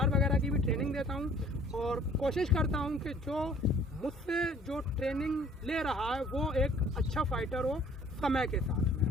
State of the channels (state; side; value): normal; both; correlation 0.55